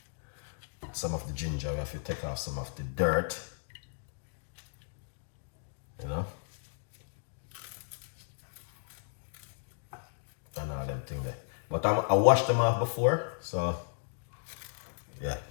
some of the ginger we have to take off some of the dirt, you know, and all them things there. But I washed them off before, so yeah,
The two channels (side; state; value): right; silent; digital silence